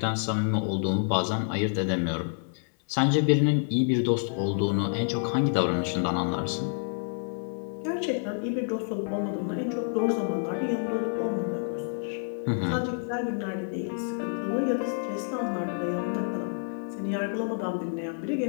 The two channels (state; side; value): silent; right; 59 dB below the other